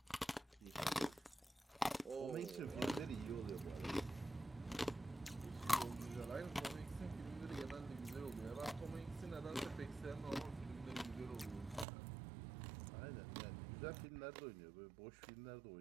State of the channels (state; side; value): drops out; left; at 11.9 s